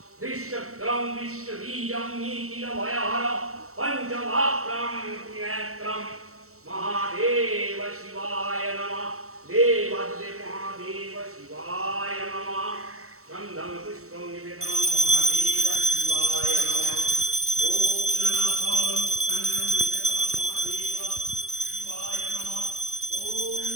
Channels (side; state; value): left; late; 0.64 ms